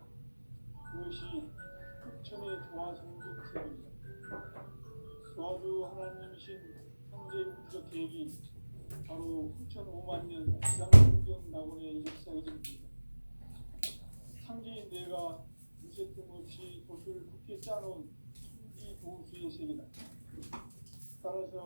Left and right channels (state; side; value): inverted; both; correlation -1.00